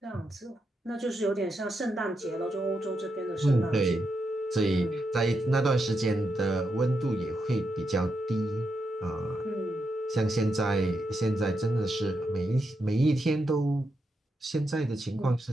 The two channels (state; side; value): normal; both; correlation 0.84